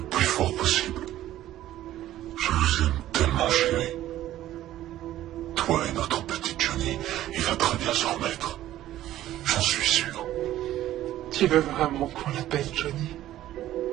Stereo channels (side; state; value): left; quieter; 13.6 dB